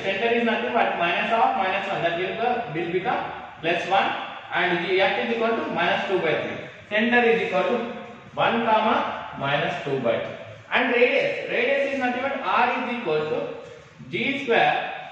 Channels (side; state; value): both; identical; correlation 1.00